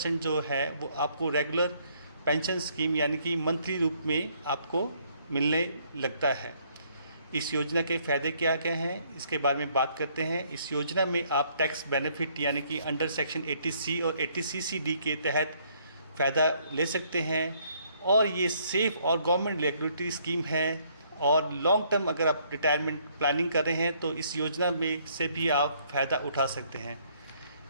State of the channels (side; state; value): both; inverted; correlation -0.66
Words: जो है वो आपको रेगुलर पेंशन स्कीम यानी कि मंथली रूप में आपको मिलने लगता है। इस योजना के फ़ायदे क्या क्या हैं, इसके बारे में बात करते हैं। इस योजना में आप टैक्स बेनिफिट यानी कि अंडर सेक्शन 80C और 80CCD के तहत फ़ायदा ले सकते हैं। और ये सेफ़ और गवर्नमेंट रेगुलेटरी स्कीम है। और लॉन्ग टर्म अगर आप रिटायरमेंट प्लानिंग कर रहे हैं तो इस योजना में से भी आप फ़ायदा उठा सकते हैं।